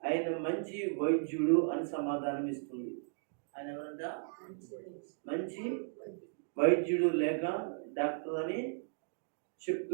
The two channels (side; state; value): left; silent; digital silence